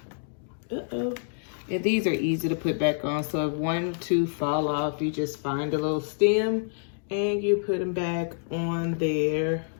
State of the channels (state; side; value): silent; right; digital silence